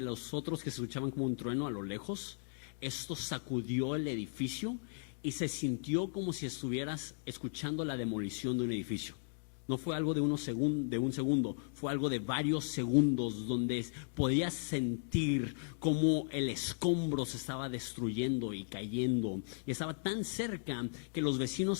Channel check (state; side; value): silent; right; digital silence